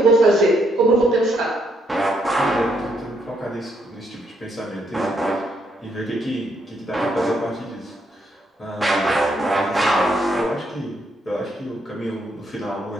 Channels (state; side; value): normal; both; correlation 0.74